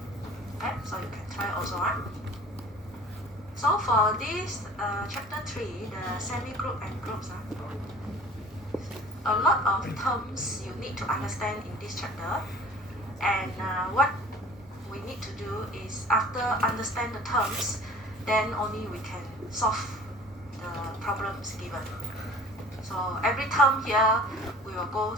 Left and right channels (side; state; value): both; normal; correlation 0.46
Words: Okay, so you can try also. So for this chapter 3, the semi-group and groups, a lot of terms you need to understand in this chapter, and what we need to do is after understand the terms, then only we can solve the problems given. So every term here we will go